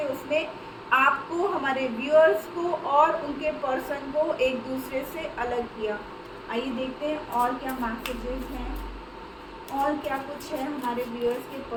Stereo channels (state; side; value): identical; both; correlation 1.00